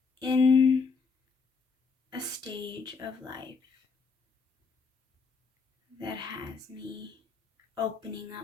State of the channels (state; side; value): quieter; right; 5.0 dB